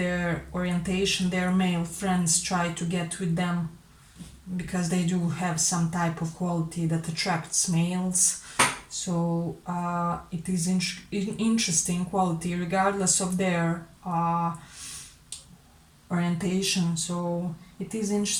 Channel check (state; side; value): identical; both; correlation 1.00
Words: orientation, their male friends try to get with them because they do have some type of quality that attracts males. So it is interesting quality regardless of their orientation. So it is